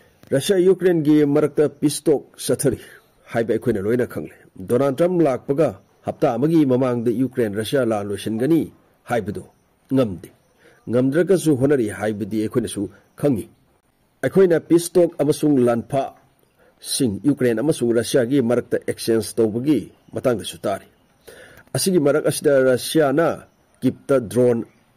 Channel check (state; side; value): identical; both; correlation 1.00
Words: Russia Ukraine gi Marakta Pistok Satari, Hype Equinoina Kangle. Donald Trump Lak Paga, Hapta Magi Mamang the Ukraine Russia La Lushengani, Hybedo, Ngamdi. Ngamdrakasu Honori Hybe the Equinisu, Kangi. Equina Pistok Amasung Lanpa, Sing Ukraine Amasung Russia gi Marakta Exchange Tobagi, Matang the Sutari. Asigi Marakasda Russia na, keep the drone